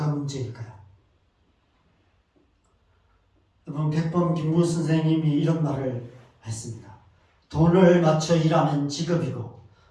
문제일까요? 여러분, 백범 김무 선생님이 이런 말을 했습니다. 돈을 맞춰 일하면 직업이고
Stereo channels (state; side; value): identical; both; correlation 1.00